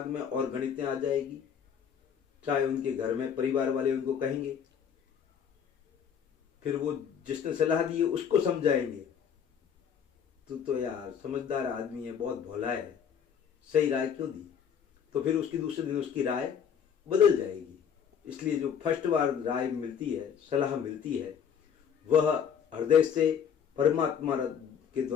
में और गणितें आ जाएगी, चाहे उनके घर में परिवार वाले उनको कहेंगे, फिर वो जिसने सलाह दी है उसको समझाएंगे, तो यार समझदार आदमी है, बहुत भोला है, सही राय क्यों दी, तो फिर उसकी दूसरे दिन उसकी राय बदल जाएगी। इसलिए जो फर्स्ट बार राय मिलती है, सलाह मिलती है, वह हृदय से परमात्मा के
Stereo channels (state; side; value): quieter; right; 7.8 dB